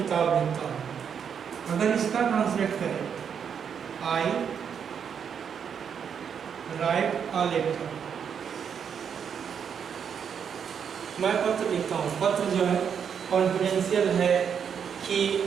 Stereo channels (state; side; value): quieter; left; 7.4 dB